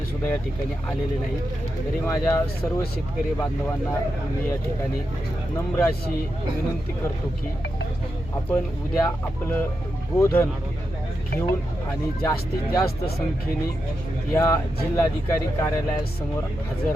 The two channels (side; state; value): left; noise; hum, 14 dB below the sound